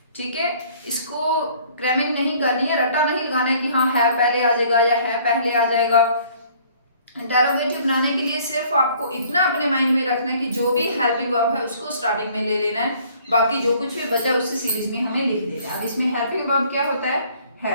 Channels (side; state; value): both; inverted; correlation -0.57